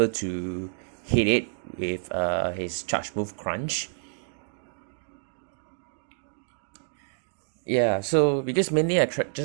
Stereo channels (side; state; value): left; silent; digital silence